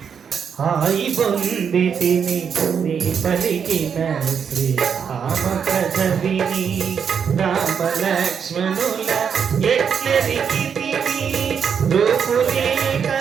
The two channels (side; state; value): left; quieter; 7.1 dB